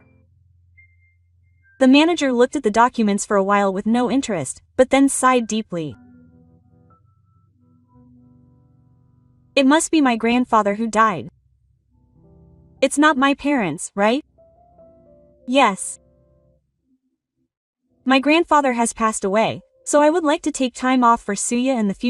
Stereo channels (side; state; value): both; identical; correlation 1.00